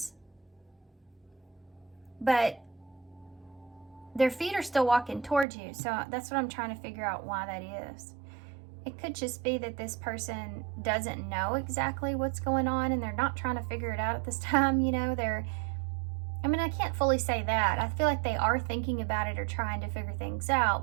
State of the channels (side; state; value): left; drops out; at 5.5 s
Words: But their feet are still walking towards you. So that's what I'm trying to figure out why that is. It could just be that this person doesn't know exactly what's going on and they're not trying to figure it out at this time. You know, I mean, I can't fully say that. I feel like they are thinking about it or trying to figure things